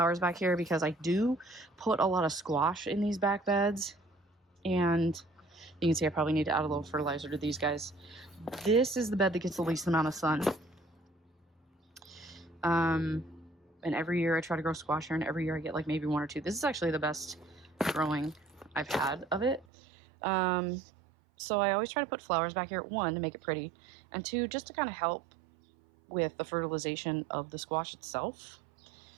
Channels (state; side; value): drops out; left; at 19.7 s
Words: back here because I do put a lot of squash in these back beds, and you can see I probably need to add a little fertilizer to these guys. This is the bed that gets the least amount of sun. And every year I try to grow squash here, and every year I get like maybe 1 or 2. This is actually the best growing I've had of it. So I always try to put flowers back here, 1, to make it pretty, and 2, just to kind of help with the fertilization of the squash itself,